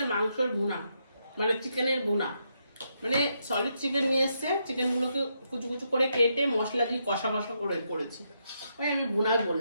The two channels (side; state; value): both; inverted; correlation -0.80